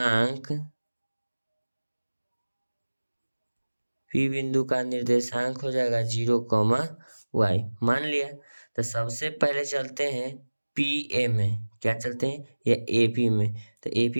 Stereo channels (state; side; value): inverted; both; correlation -1.00